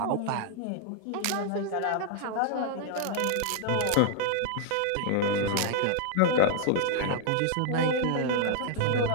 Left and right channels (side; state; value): both; different; correlation 0.00